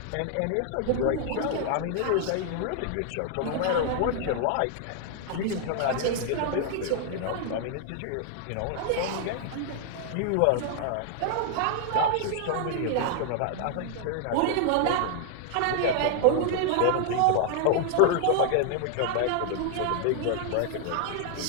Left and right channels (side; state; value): both; different; correlation 0.00